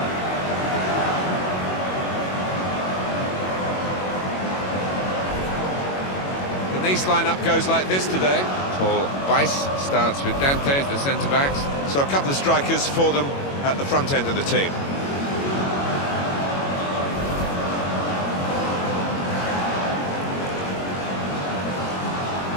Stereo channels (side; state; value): right; late; 22 ms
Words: The Nice lineup goes like this today. Paul Weiss starts with Dante as the centre-backs. So a couple of strikers for them at the front end of the team.